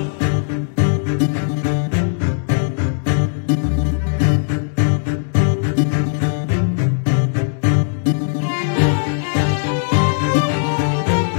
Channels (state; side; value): silent; right; 66 dB below the other